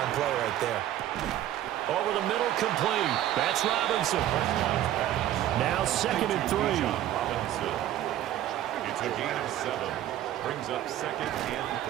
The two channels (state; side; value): quieter; left; 12.5 dB